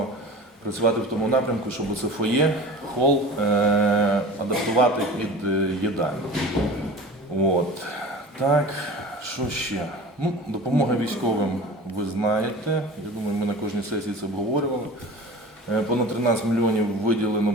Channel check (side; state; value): both; normal; correlation 0.37